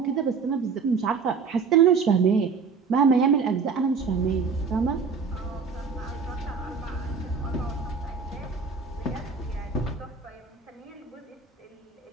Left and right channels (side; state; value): left; quieter; 5.3 dB